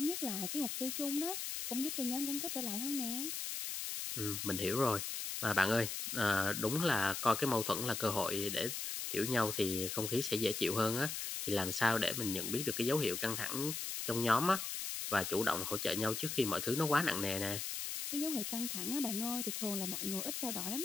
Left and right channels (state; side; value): noise; left; hiss, 4 dB below the sound